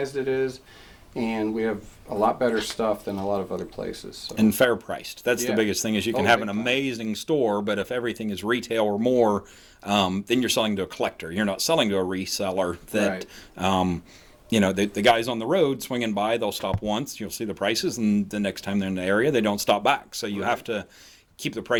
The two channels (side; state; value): both; identical; correlation 1.00